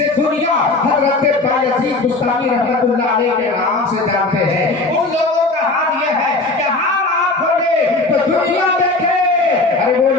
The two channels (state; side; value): quieter; right; 3.3 dB